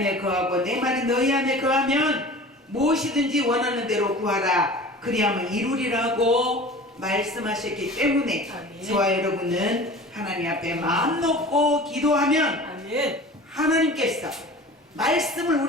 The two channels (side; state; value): both; normal; correlation 0.40